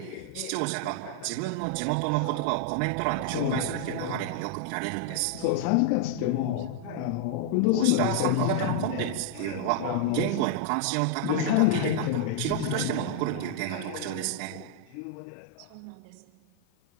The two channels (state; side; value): different; both; correlation -0.01